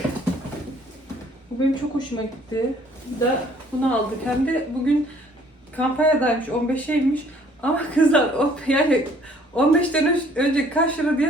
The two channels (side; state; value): both; normal; correlation 0.59